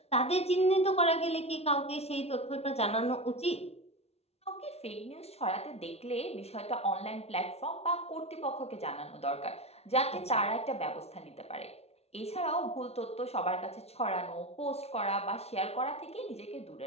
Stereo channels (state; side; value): late; right; 0.30 ms